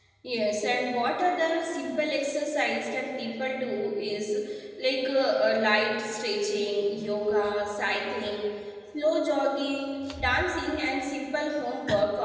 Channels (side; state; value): both; identical; correlation 1.00